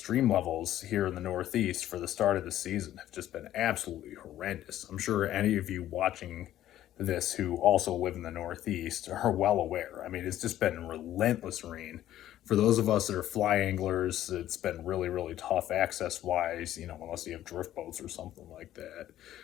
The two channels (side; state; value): right; quieter; 12.8 dB